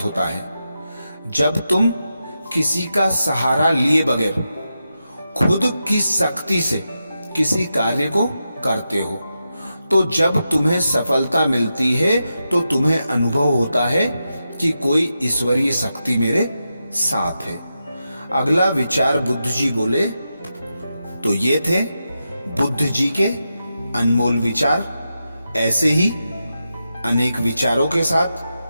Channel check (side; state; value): both; inverted; correlation -0.88